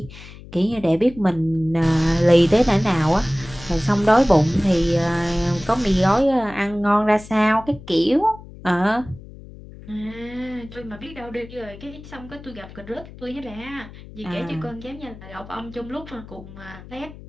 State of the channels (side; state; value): left; noise; hum, 17 dB below the sound